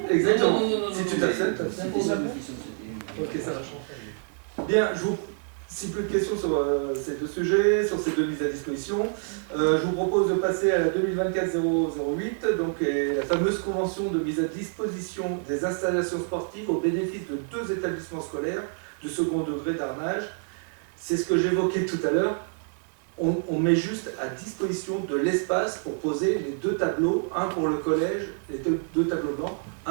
Exactement. Si tu t'abstiens, t'abstiens pour la Ok, ça va. Bien, si plus de questions sur ces deux sujets, sur ces deux mises à disposition, je vous propose de passer à la 2024-008, donc la fameuse convention de mise à disposition des installations sportives au bénéfice de 2 établissements scolaires de second degré d'Arnage. C'est ce que j'évoquais tout à l'heure. On met juste à disposition de l'espace pour poser les 2 tableaux, un pour le collège, les deux tableaux blancs,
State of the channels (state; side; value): silent; left; 60 dB below the other